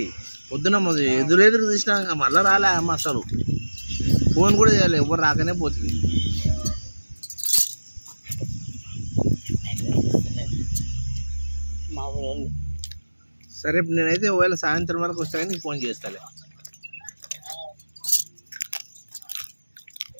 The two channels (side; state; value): both; inverted; correlation -1.00